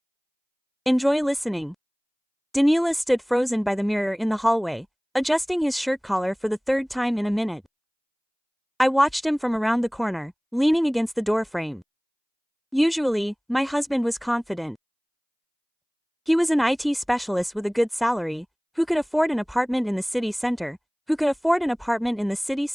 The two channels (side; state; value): both; identical; correlation 1.00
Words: Enjoy listening. Danila stood frozen by the mirror in the hallway, adjusting his shirt collar for the third time in a minute. I watched him from around the corner, leaning against the doorframe. Usually, my husband was confident. He was an IT specialist with a good salary, who could afford an apartment in the city center,